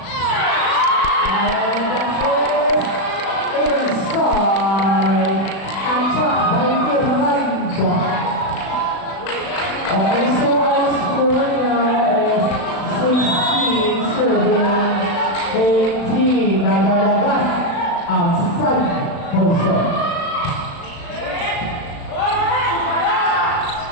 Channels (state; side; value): late; right; 36 ms